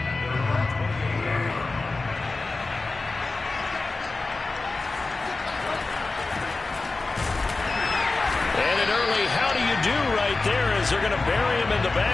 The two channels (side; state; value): right; quieter; 3.6 dB